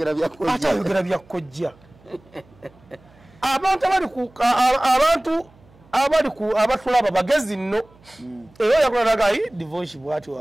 ate ayogera byakojja abantu abali ku abatulaba bagezi nno era yakulalaga divorce bwati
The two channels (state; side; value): noise; right; hum, 28 dB below the sound